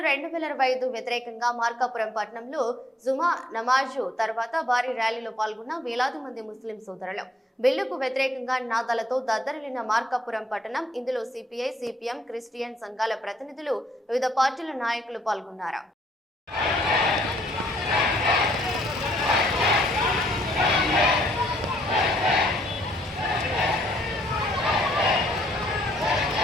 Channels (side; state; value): both; normal; correlation 0.68